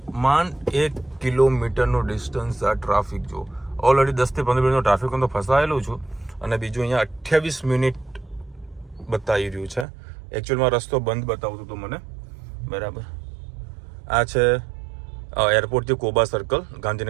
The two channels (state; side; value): drops out; left; at 9.9 s